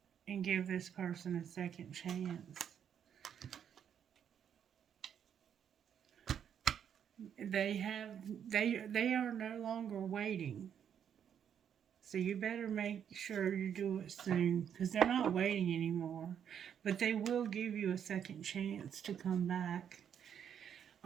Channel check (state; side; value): quieter; left; 8.5 dB